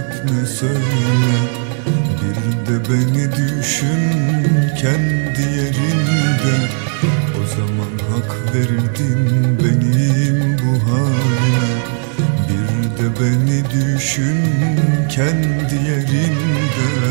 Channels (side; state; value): left; silent; digital silence